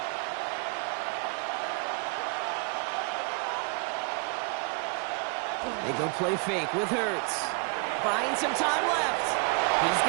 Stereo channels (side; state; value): left; quieter; 35.2 dB